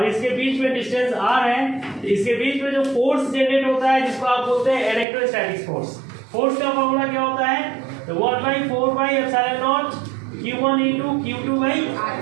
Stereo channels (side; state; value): left; drops out; at 5.1 s